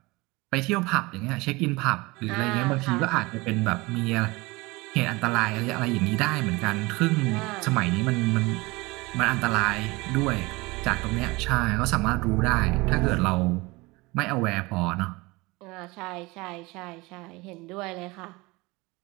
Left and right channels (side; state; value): left; quieter; 23.4 dB